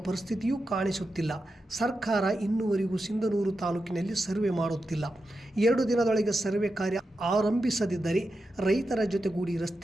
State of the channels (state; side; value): normal; both; correlation 0.89